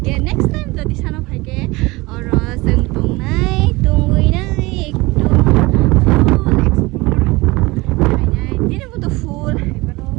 के नेक्स्ट टाइम जदि सानो भाइके और जों तंगुइनाय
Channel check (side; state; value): left; quieter; 22.4 dB